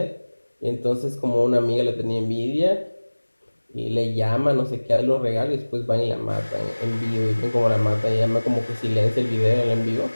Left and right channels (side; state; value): both; inverted; correlation -1.00